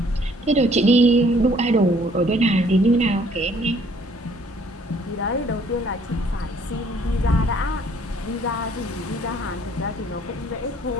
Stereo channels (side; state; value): both; normal; correlation 0.61